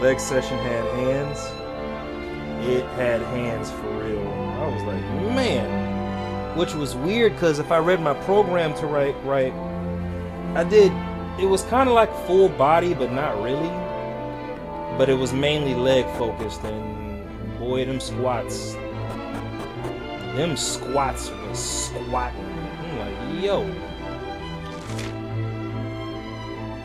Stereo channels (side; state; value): both; identical; correlation 1.00